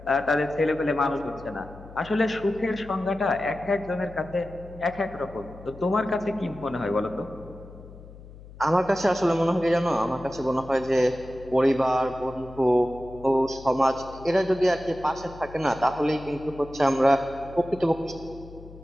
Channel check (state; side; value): noise; left; hum, 18 dB below the sound